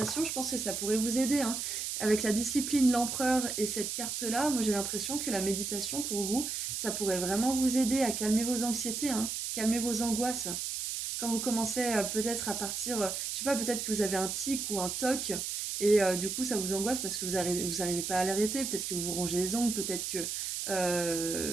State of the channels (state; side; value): noise; right; hiss, 3 dB below the sound